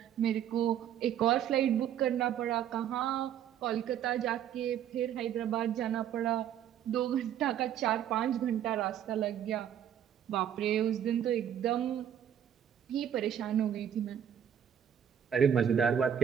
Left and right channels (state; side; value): quieter; left; 9.6 dB